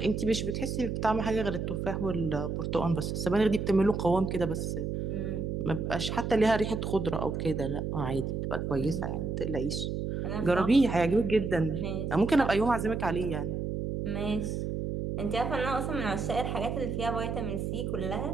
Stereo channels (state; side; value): noise; right; hum, 2 dB below the sound